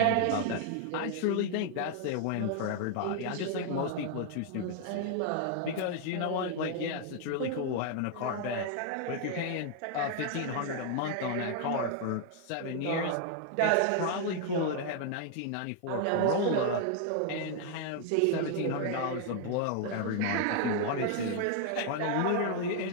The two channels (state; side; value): different; both; correlation 0.00